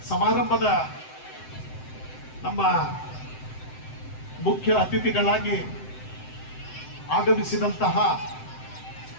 ಸಮಾರಂಭದ ನಮ್ಮ ಮುಖ್ಯ ಅತಿಥಿಗಳಾಗಿ ಆಗಮಿಸಿದಂತಹ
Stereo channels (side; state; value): right; late; 7.8 ms